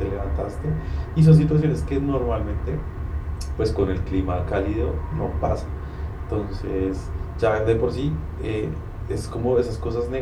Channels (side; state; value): both; identical; correlation 1.00